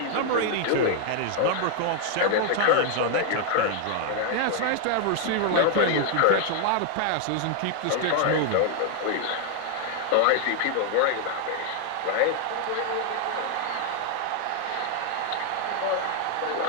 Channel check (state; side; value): different; both; correlation 0.00